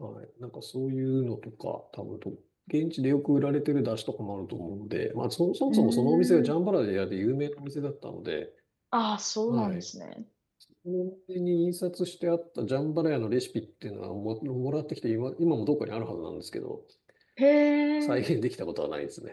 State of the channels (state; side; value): identical; both; correlation 1.00